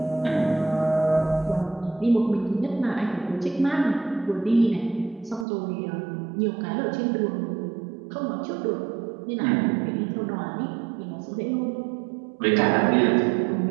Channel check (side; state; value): left; drops out; at 5.5 s